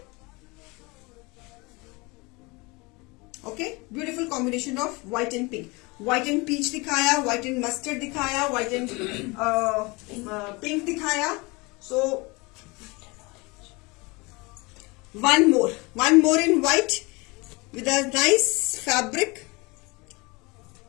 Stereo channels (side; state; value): right; quieter; 25.9 dB